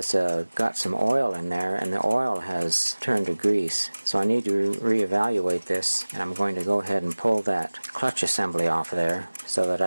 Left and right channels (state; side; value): inverted; both; correlation -1.00